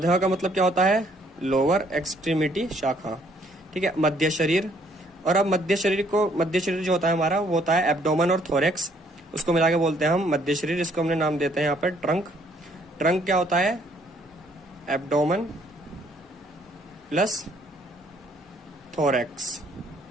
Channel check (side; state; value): both; normal; correlation 0.65